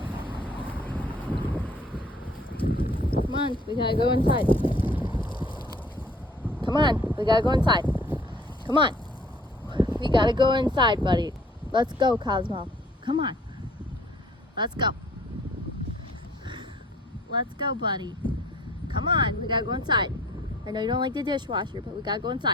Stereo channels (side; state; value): both; normal; correlation 0.55